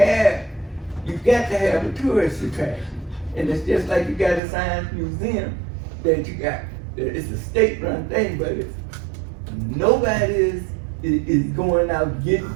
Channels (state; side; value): drops out; left; at 4.4 s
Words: you got to have a tourist attraction. And it's just like you got a science museum that you got, it's a state-run thing, but it's, nobody is going out getting